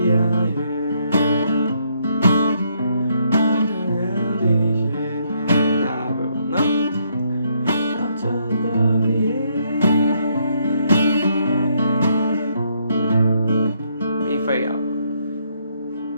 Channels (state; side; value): inverted; both; correlation -0.72